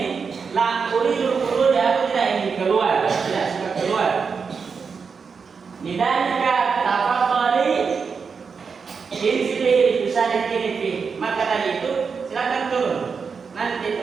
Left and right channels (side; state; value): left; quieter; 5.6 dB